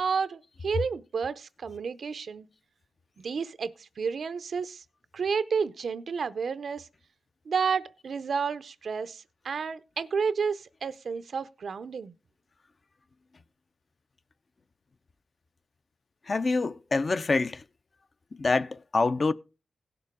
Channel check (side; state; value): both; normal; correlation 0.87